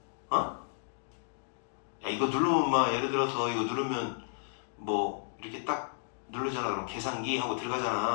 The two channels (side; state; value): right; silent; digital silence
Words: 야, 이거 누르면 막 예를 들어서 이거 누르면 뭐 이렇게 딱 누르잖아. 그럼 계산기 하고